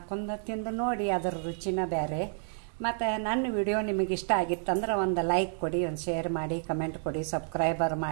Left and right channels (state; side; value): silent; left; 58 dB below the other